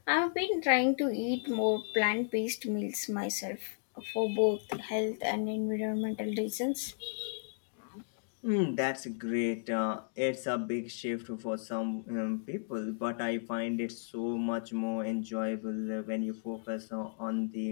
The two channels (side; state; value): right; silent; digital silence